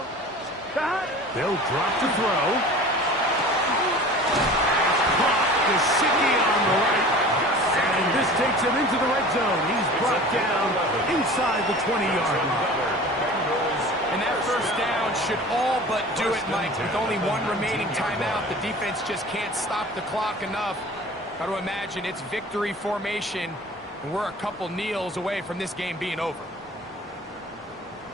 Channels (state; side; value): normal; both; correlation 0.41